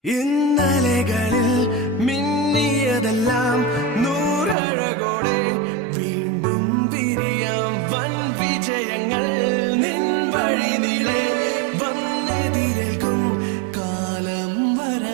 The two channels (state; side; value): drops out; left; at 4.5 s